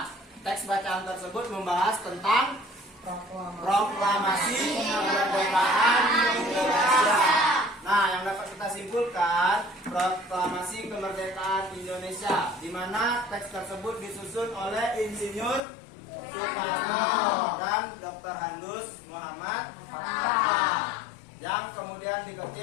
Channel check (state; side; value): drops out; right; at 15.7 s